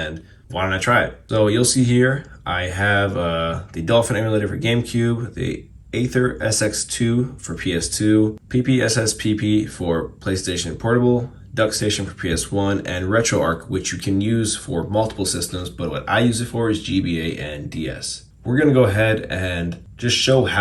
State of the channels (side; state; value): both; identical; correlation 1.00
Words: why don't I try it? So you'll see here, I have the Dolphin emulator for GameCube, the Aether SX2 for PS2, PPSSPP for PlayStation Portable, DuckStation for PS1, and RetroArch, which you can use for multiple systems, but what I use it for is GBA and DS. We're gonna go ahead and just show